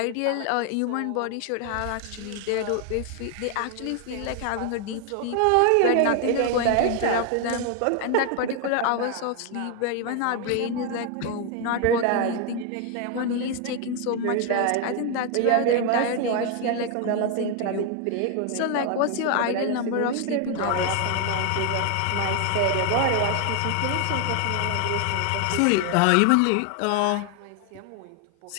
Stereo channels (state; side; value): different; both; correlation 0.01